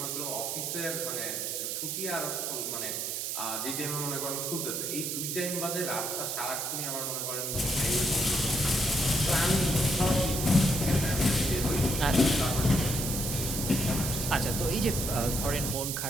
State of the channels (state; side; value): noise; right; hiss, 2 dB below the sound